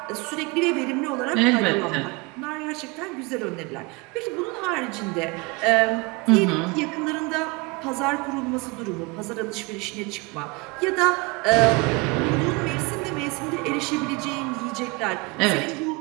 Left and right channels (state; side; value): quieter; left; 27.1 dB